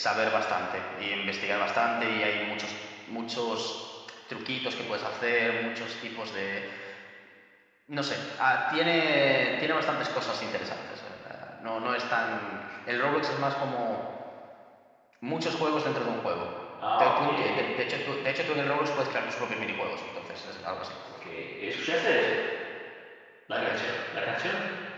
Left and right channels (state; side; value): identical; both; correlation 1.00